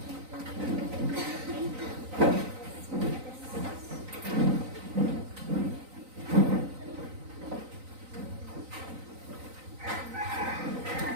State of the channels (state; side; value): late; left; 3.9 ms